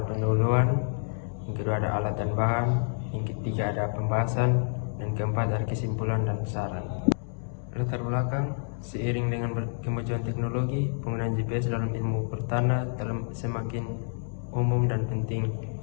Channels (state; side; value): silent; right; 59 dB below the other